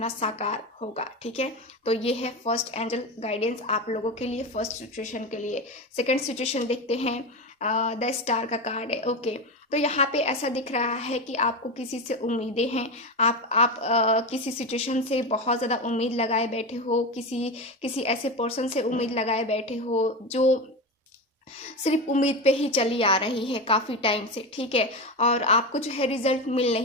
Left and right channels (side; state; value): both; normal; correlation 0.19